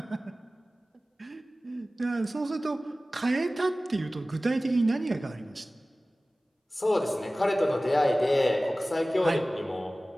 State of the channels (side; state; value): both; normal; correlation 0.97